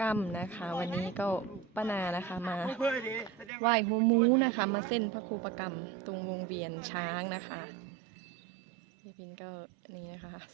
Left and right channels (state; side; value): drops out; left; at 3.5 s